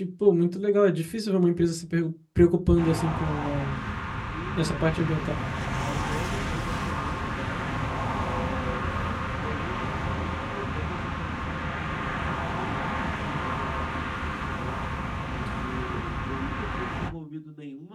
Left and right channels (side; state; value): both; identical; correlation 1.00